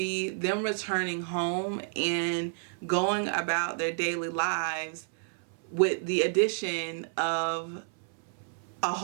them returning home and going about their daily lives with the addition of a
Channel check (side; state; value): left; silent; 58 dB below the other